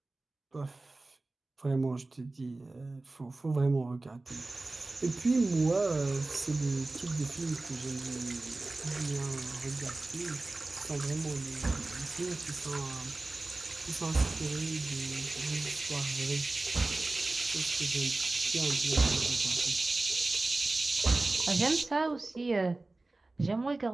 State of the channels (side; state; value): left; quieter; 3.1 dB